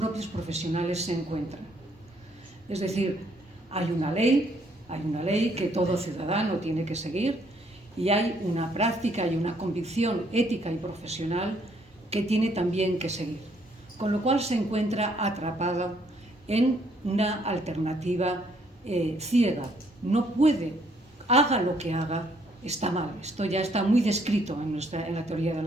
profesionales se encuentran. Es decir, hay una ley que todo ciudadano tiene que seguir y hay una práctica y una convicción ética y profesional que tiene también que seguir, con lo cual se encuentra atrapado en una alternativa ciega. No puede, haga lo que haga, está mal. Esto ya está muy descrito en la teoría de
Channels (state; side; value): normal; both; correlation 0.68